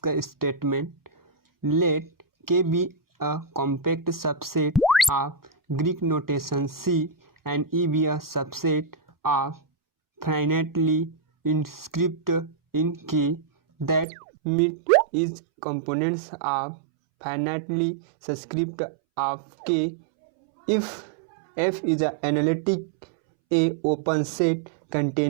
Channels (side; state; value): left; drops out; at 14.1 s